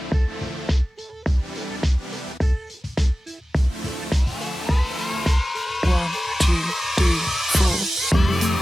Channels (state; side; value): normal; both; correlation 0.95